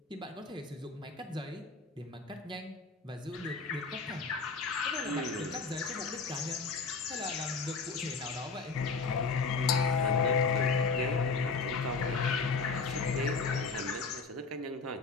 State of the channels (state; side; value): quieter; right; 4.4 dB